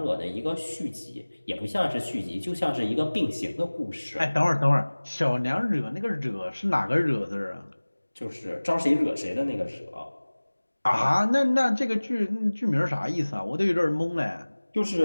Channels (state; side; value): inverted; both; correlation -1.00